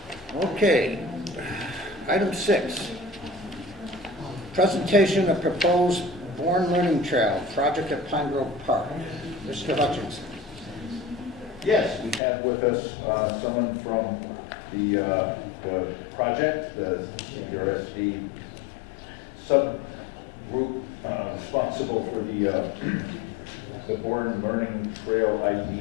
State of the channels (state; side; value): drops out; right; at 12.2 s